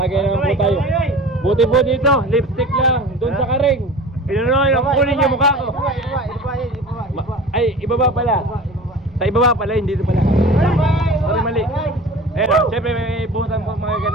naman po tayo. Buti po dito, lipstick lang, doon sa karing. Pinunoy, kunin yung mukha ko. Ay, ibaba pala. Sa ibaba pala, hindi dito pala. Sorry, mali. Ayun, siyempre may buhusan po mga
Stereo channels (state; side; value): noise; right; rumble, 24 dB below the sound